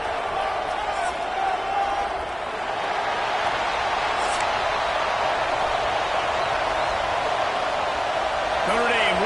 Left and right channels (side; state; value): both; identical; correlation 1.00